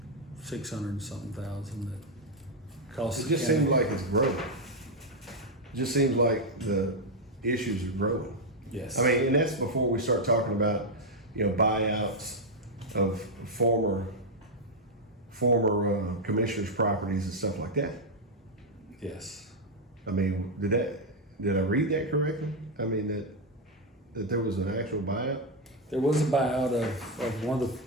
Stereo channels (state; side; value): normal; both; correlation 0.01